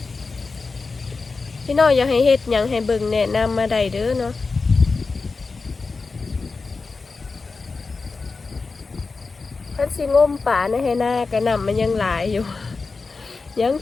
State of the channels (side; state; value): right; quieter; 4.2 dB